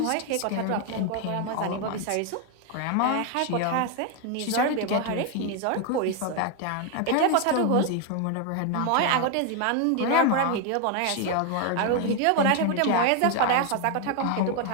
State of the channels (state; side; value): different; both; correlation 0.01